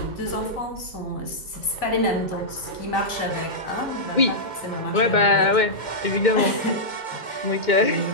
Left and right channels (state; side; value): late; right; 2.2 ms